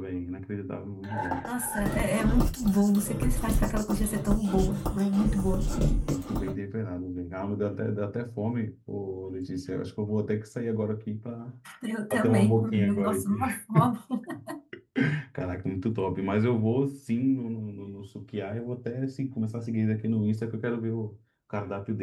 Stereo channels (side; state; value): both; identical; correlation 1.00